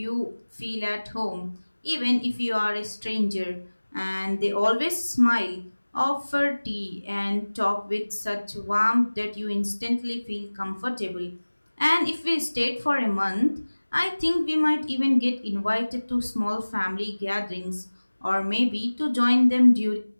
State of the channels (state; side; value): inverted; both; correlation -1.00